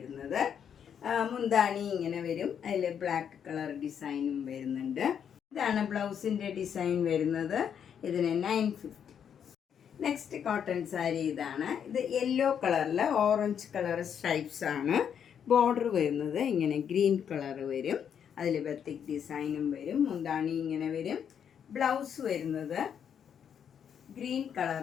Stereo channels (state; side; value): quieter; right; 8.2 dB